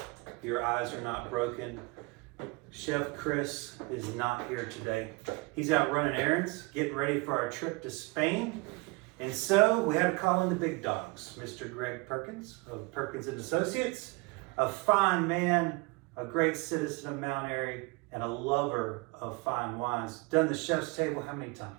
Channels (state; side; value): quieter; left; 26.4 dB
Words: Your eyes are not broken. Chef Chris is not here today. He's out running errands, getting ready for our trip to Spain. And so we had to call in the big dogs. Mr. Greg Perkins of Perkins and Associates, a fine man, a great citizen of Mount Airy, and a lover of fine wines. Done the chef's table how many